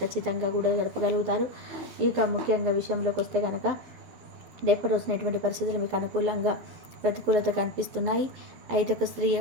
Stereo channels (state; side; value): late; left; 12 ms